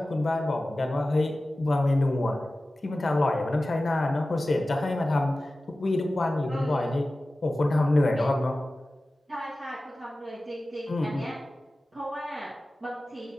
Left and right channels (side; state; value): both; normal; correlation 0.96